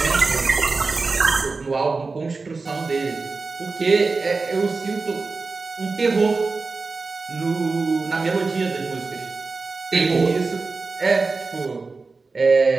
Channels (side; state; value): left; quieter; 4.1 dB